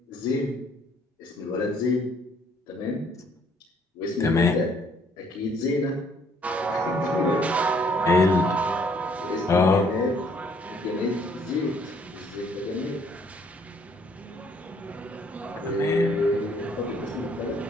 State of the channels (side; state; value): both; normal; correlation 0.63